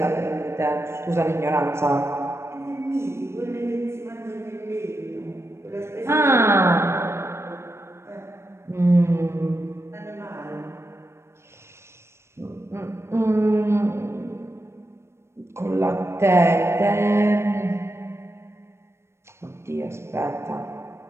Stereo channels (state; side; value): late; left; 0.13 ms